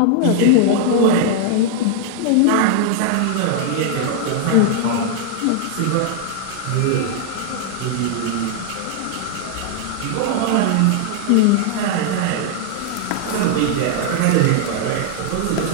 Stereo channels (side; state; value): both; different; correlation 0.00